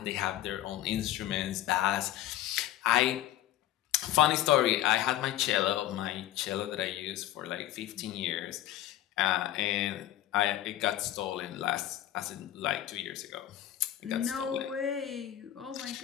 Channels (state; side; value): quieter; right; 13.2 dB